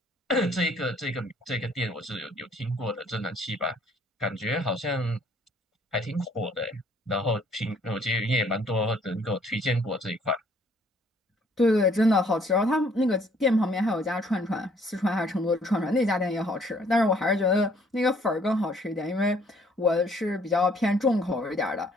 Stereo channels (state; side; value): normal; both; correlation 0.61